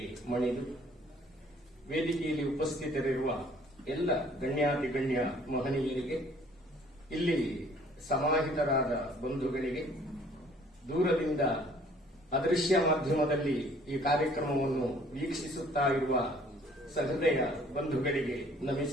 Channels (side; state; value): both; normal; correlation 0.57